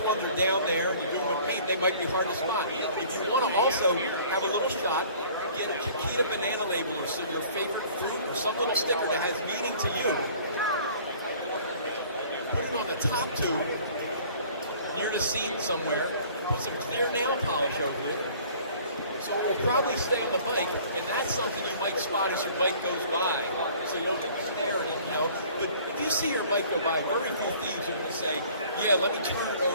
ones are down there, you're doing with paint, they might be hard to spot. If you want to also have a little shot, get a Chiquita banana label or so your favorite fruit or some little sticker that has meaning to you. Put it on the top tube, near the seat somewhere, put some clear nail polish over it, so it will probably stay on the bike, and that's something you might spot as your bike goes by, so you don't have to stare at it, you know. But if you see your bike go by, very few thieves are going to say, yeah, let me turn it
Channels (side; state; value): both; inverted; correlation -0.51